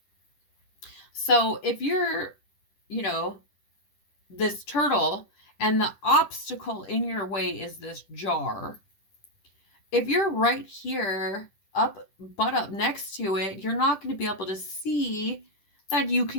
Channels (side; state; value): right; late; 10 ms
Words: So if you're, you know, this turtle and the obstacle in your way is this jar, if you're right here butt up next to it, you're not going to be able to see that you